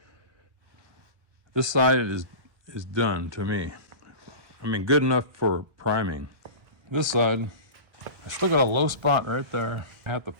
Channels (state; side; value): late; left; 1.3 ms